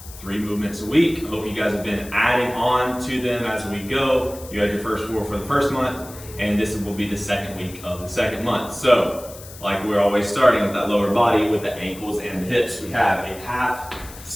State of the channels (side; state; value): left; noise; hiss, 17 dB below the sound